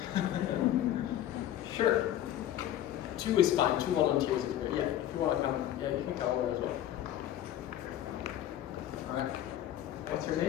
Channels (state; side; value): quieter; right; 12.1 dB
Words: Sure. 2 is fine, 2 volunteers is great. Yeah, if you wanna come, yeah, you can come over as well. All right. What's your